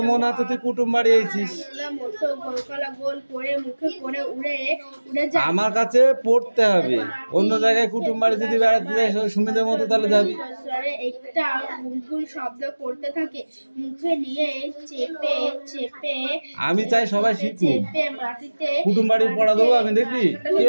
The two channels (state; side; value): inverted; both; correlation -1.00